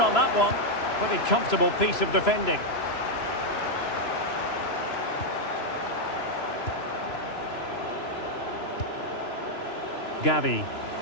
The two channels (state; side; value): late; right; 3.0 ms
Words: on that one. Pretty comfortable piece of defending. Gavi.